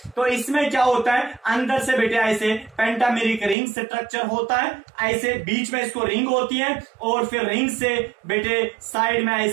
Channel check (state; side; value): drops out; left; at 3.6 s